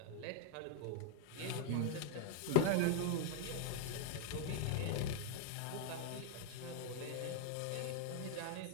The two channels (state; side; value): different; both; correlation 0.00